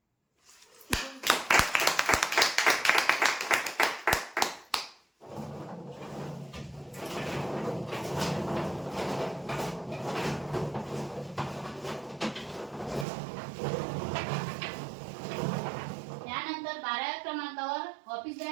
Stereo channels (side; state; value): left; drops out; at 13.1 s